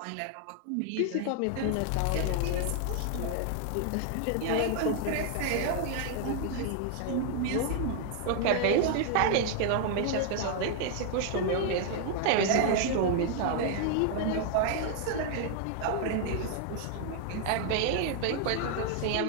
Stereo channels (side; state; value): both; different; correlation 0.00